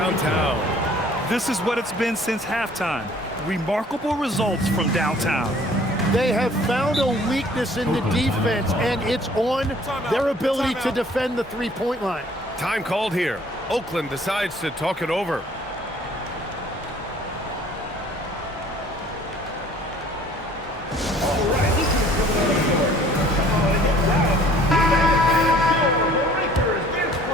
This is what it's been since halftime. Remarkable results from downtown. They have found a weakness in the defense, and it's on their ability to defend the three-point line. Time called here. Oakland decides to talk it over.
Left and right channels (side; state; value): both; normal; correlation 0.54